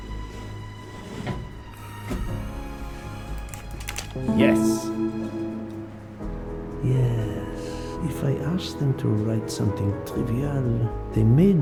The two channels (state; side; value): identical; both; correlation 1.00